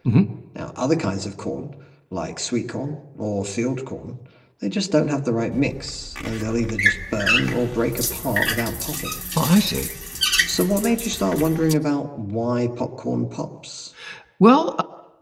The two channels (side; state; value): both; identical; correlation 1.00